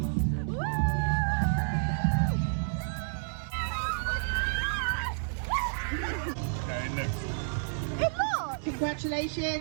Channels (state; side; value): silent; left; 58 dB below the other